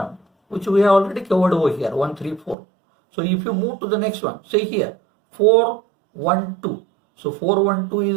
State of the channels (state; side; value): drops out; left; at 2.6 s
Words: which we have already covered over here. 1, 3, 4. So if you move to the next one, say here 4, 1, 2. So 4, 1, 2